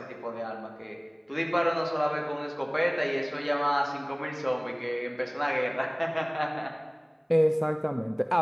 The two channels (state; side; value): identical; both; correlation 1.00